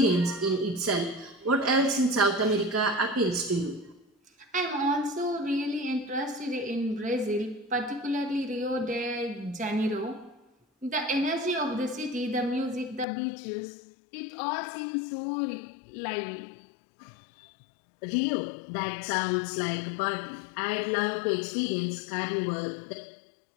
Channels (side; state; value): right; drops out; at 13.1 s